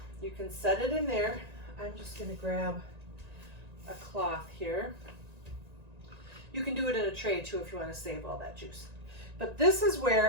You can set it in there. I'm just going to grab a cloth here. You can do it in a tray too if you want to save all that juice. But this is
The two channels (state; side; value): late; left; 1.9 ms